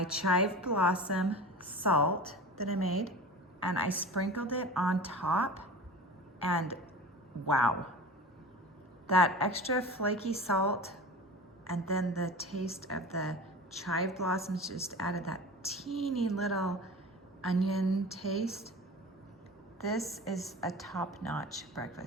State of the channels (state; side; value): normal; both; correlation 0.35